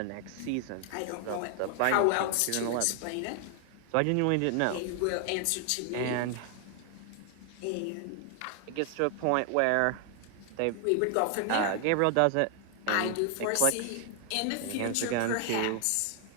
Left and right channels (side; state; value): both; different; correlation 0.00